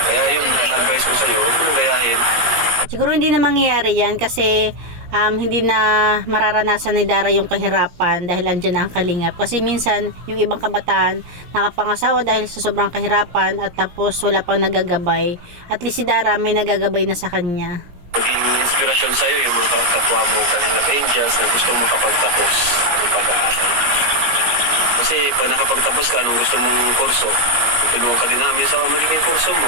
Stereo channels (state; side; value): late; left; 17 ms